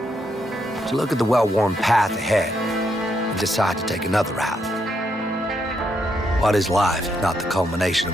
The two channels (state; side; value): normal; both; correlation 0.78